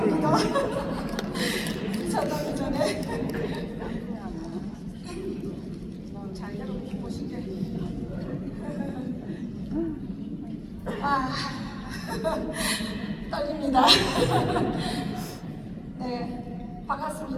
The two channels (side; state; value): both; identical; correlation 1.00